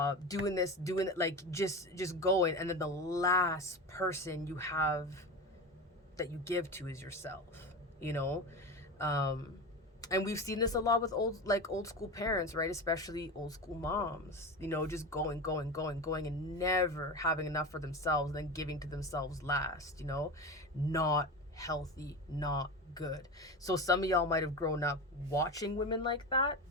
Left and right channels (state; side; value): normal; both; correlation 0.25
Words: doing this, doing it, like just going. And then the last person you have that you give to is yourself, and we've seen this a lot with old school parents, right? Especially old school moms, just going, and never having enough for themselves, and then giving to themselves last, not healthy, not good. So some of y'all might have grown up watching women like that.